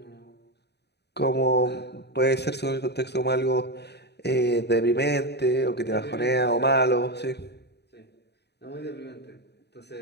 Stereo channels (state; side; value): late; right; 0.49 ms